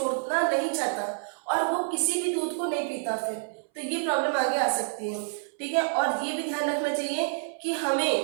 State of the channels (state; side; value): silent; left; 59 dB below the other